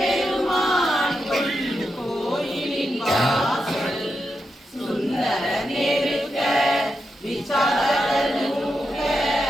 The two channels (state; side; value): normal; both; correlation 0.86